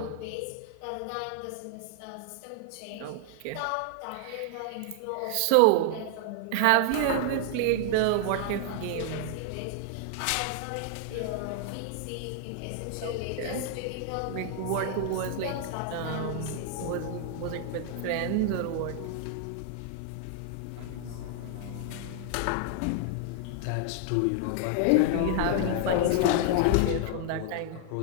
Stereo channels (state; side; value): different; both; correlation 0.00